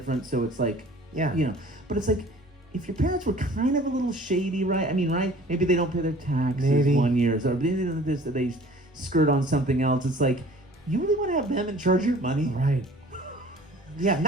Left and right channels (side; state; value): both; normal; correlation 0.49